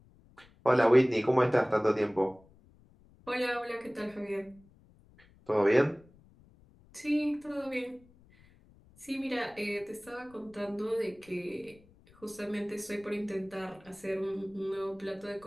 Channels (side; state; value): left; noise; rumble, 27 dB below the sound